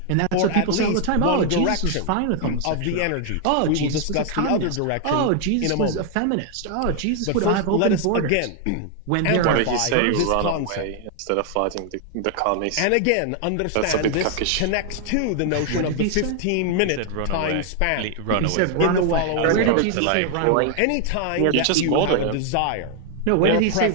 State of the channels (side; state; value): both; different; correlation 0.00